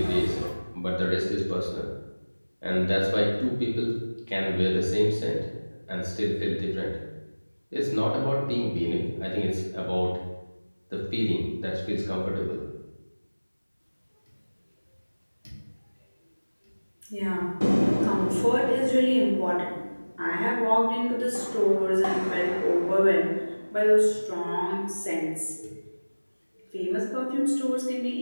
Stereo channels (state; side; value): inverted; both; correlation -1.00